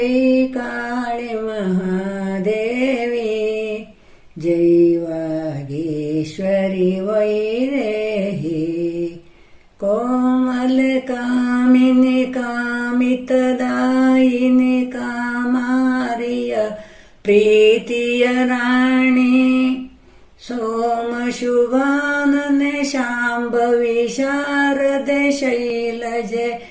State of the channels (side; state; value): both; identical; correlation 1.00